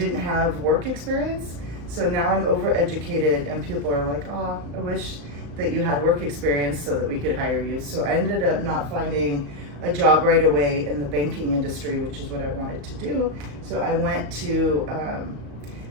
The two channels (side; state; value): left; late; 35 ms